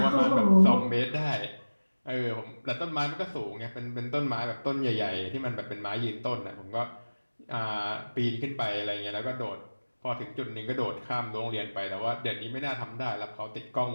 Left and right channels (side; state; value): both; inverted; correlation -1.00